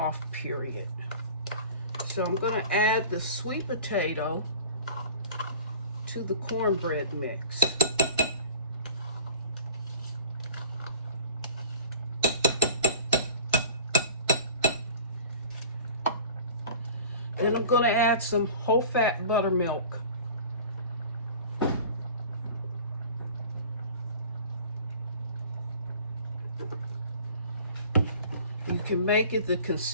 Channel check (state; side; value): inverted; both; correlation -0.42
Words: period. So I'm going to add the sweet potato to the cornbread mix. Then I'm going to add some whole fat buttermilk. You can make it the